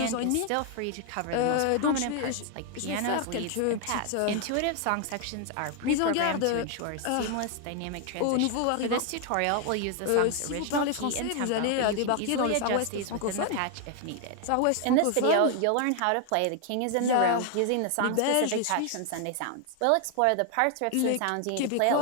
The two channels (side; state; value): both; different; correlation 0.00